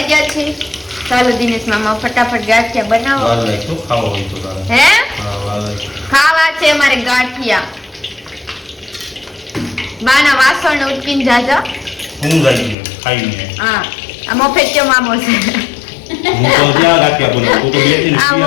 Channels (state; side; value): drops out; right; at 12.8 s